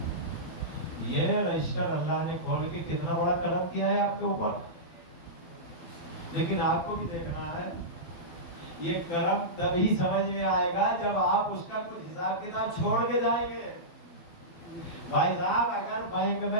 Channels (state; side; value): late; right; 12 ms